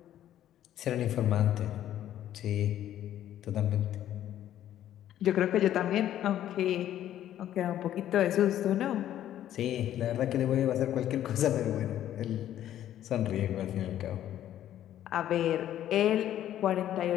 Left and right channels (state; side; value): quieter; right; 11.8 dB